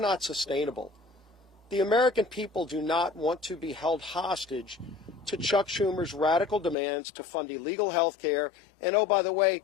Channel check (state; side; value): drops out; right; at 6.8 s